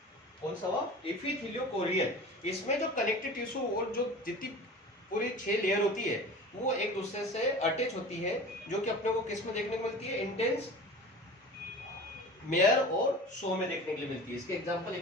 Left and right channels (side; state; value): both; normal; correlation 0.37